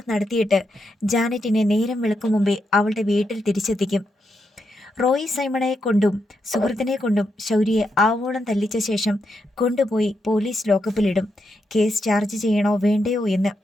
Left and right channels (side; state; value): both; normal; correlation 0.83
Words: നടത്തിയിട്ട് ജാനറ്റിനെ നേരം വെളുക്കും മുമ്പേ അവളുടെ വീട്ടിൽ തിരിച്ചെത്തിക്കും. റോയ് സൈമണയെ കൊണ്ടും സുഹൃത്തിനെ കൊണ്ടും ശൗര്യയെ ആവോളം തല്ലിച്ച ശേഷം കൊണ്ടുപോയി പോലീസ് ലോക്കപ്പിലിടും. കേസ് ചാർജ് ചെയ്യണോ വേണ്ടയോ എന്ന്